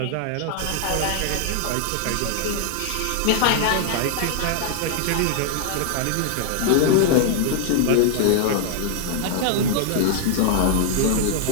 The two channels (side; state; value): both; different; correlation -0.01